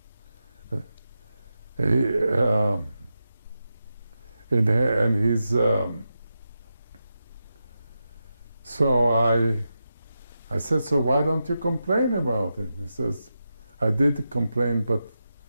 so I said, so why don't you complain about it? He says, I did complain, but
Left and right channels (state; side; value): inverted; both; correlation -0.89